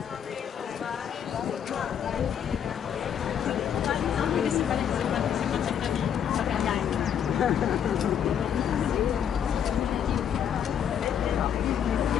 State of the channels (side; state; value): right; quieter; 8.7 dB